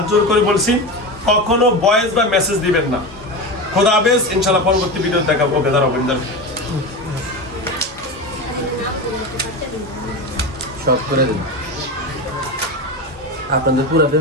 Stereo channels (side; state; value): both; normal; correlation 0.23